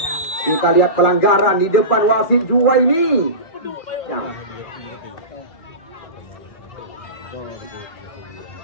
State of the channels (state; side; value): late; right; 2.4 ms